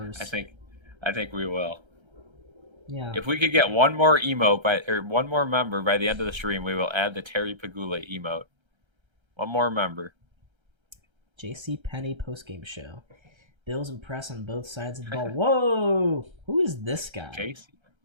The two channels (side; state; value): left; late; 1.3 ms